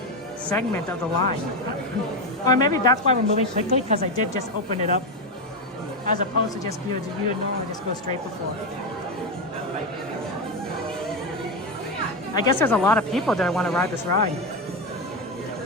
segment of the line. Or maybe that's why we're moving quickly because I did just open it up as opposed to just view it normal and just go straight before. I guess there's a lot of people that want to ride this ride.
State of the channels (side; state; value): both; normal; correlation 0.11